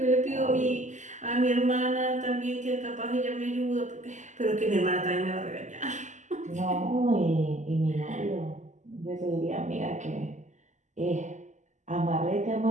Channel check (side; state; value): left; late; 0.34 ms